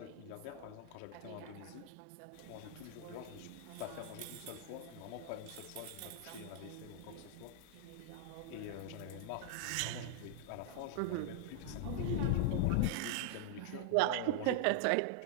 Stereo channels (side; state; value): both; different; correlation -0.01